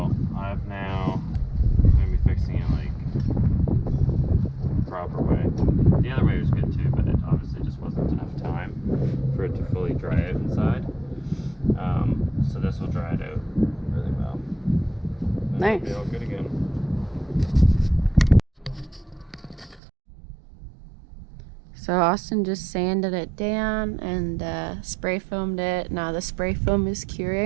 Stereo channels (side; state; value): left; drops out; at 19.8 s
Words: I'm now going to be fixing it like the proper way. The other way was good too, but it obviously just wasn't enough time for it to fully dry out inside. So this will dry it out really well. And Nice. it'll be all good again. So Austin just sanded it down and spray foamed it. Now the spray foam is